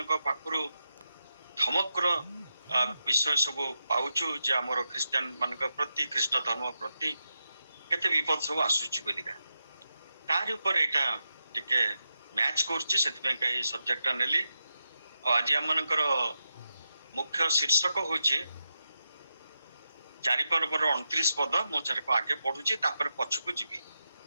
पाखरु धमकर विषय सब पाउछु जे हमर क्रिश्चियन मानक प्रति ख्रीष्ट धर्म प्रति केते विपद सब आसुछि बोलिका तार ऊपर एटा टिके मैच करछि सेति पे सब्जेक्ट नेली। आज हम मानकर मुख्य शीर्षक होछि 4 पर्वर 29 पद मो चार को आगे पढुछि तापर पछकु जिबी।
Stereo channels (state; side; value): inverted; both; correlation -0.88